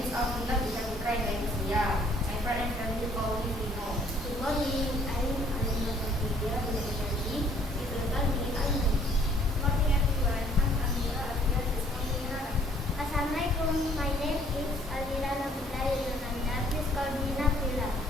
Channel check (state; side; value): normal; both; correlation 0.60